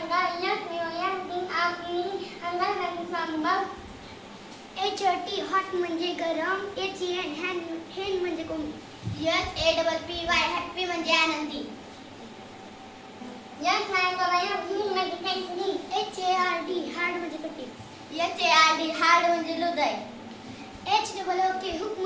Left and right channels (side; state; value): both; identical; correlation 1.00